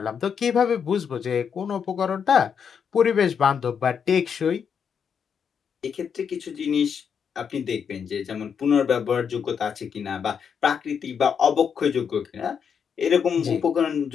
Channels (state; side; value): quieter; right; 7.0 dB